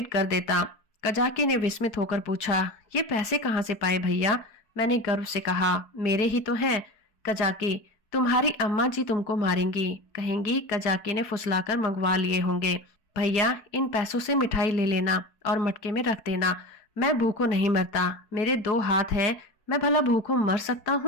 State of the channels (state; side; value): late; right; 4.7 ms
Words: कर देता। कजाकी ने विस्मित होकर पूछा, ये पैसे कहाँ से पाए भैया? मैंने गर्व से कहा, मेरे ही तो हैं। कजाकी, तुम्हारी अम्मा जी तुमको मारेंगी, कहेंगी कजाकी ने फुसलाकर मंगवा लिए होंगे। भैया इन पैसों से मिठाई ले लेना और मटके में रख देना। मैं भूखों नहीं मरता, मेरे 2 हाथ हैं, मैं भला भूखों मर सकता